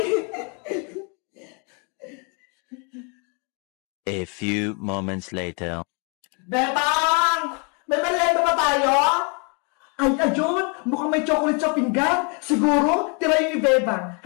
A few moments later. Bebang! May merienda ba tayo? Ay, ayun! Mukhang may chocolate sa pinggan. Siguro, tira yun ni Bebang.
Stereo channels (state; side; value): quieter; right; 35.6 dB